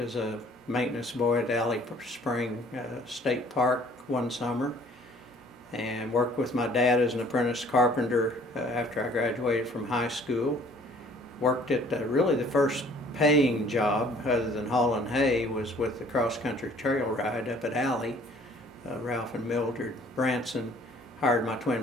a maintenance boy at Alley Spring State Park one summer, and worked with my dad as an apprentice carpenter after I graduated from high school. Worked at really the first paying job other than hauling hay was with the cross-country trail ride up at Alley. Ralph and Mildred Branson hired my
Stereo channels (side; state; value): both; normal; correlation 0.56